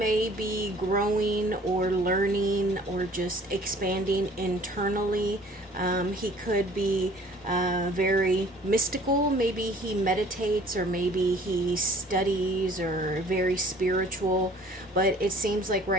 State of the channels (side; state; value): both; normal; correlation 0.53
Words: be growing or learning or just expanding internally. He could be very mystical. Maybe he meditates, or maybe he studies, or very spiritual. But it seems like